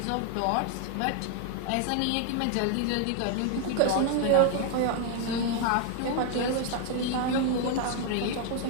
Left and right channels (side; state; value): both; different; correlation 0.00